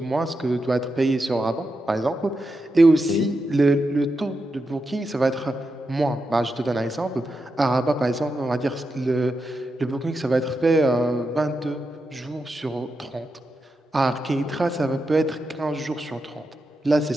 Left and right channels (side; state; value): both; normal; correlation 0.87